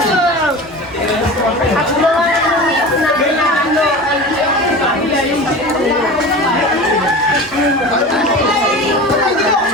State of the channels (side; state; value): both; normal; correlation 0.33